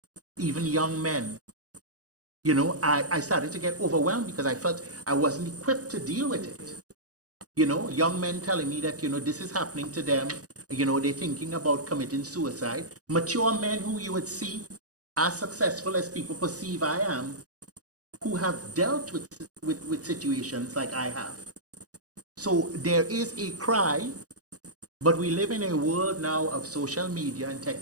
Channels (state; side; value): late; left; 0.67 ms